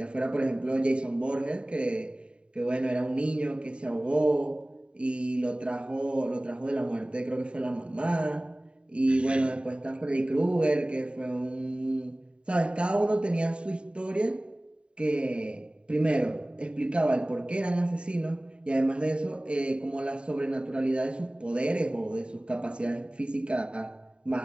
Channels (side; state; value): left; late; 0.054 ms